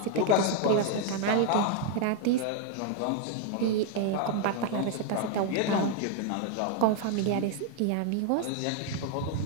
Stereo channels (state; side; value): different; both; correlation 0.00